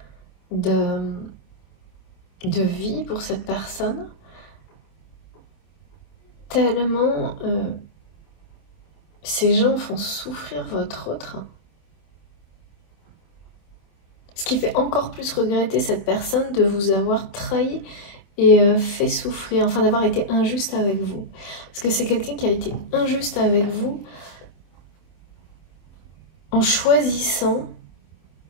de vie pour cette personne, tellement ces gens font souffrir votre autre. Ce qui fait encore plus regretter cette personne de vous avoir trahi et fait souffrir, enfin d'avoir été injuste avec vous. Parce que c'est quelqu'un qui a été injuste avec vous en choisissant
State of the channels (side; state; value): right; late; 26 ms